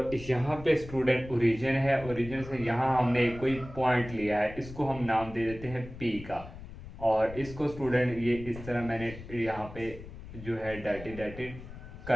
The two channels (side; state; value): left; noise; rumble, 14 dB below the sound